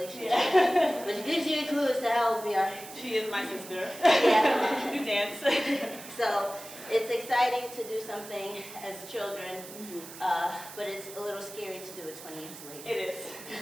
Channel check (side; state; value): right; noise; hiss, 14 dB below the sound